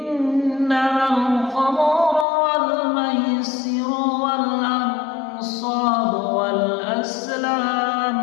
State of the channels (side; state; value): right; drops out; at 2.2 s